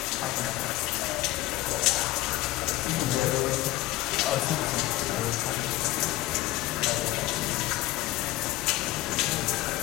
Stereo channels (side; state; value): right; quieter; 17.2 dB